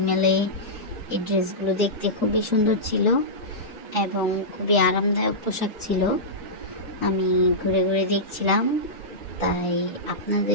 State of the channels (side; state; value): both; normal; correlation -0.14